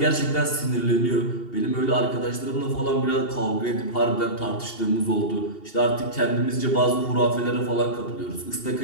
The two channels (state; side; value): late; right; 2.8 ms